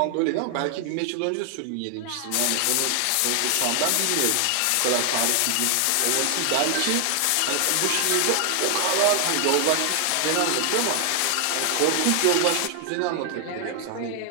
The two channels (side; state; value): both; different; correlation 0.00